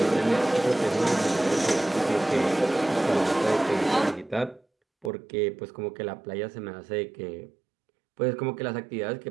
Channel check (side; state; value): left; drops out; at 5.1 s